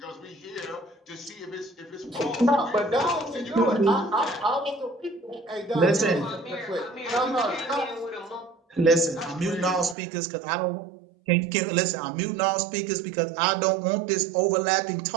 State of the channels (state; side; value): drops out; left; at 10.0 s